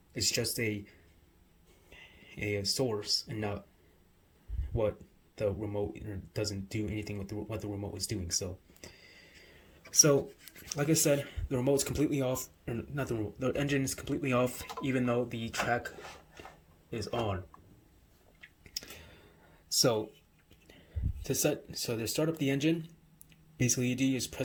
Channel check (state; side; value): identical; both; correlation 1.00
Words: just a source and not what the remote, doesn't do anything with what the remote is doing. So like I said, the remote's completely off, or not the remote, the engine is completely off, even though the track is on. So to start up the engine, basically you do is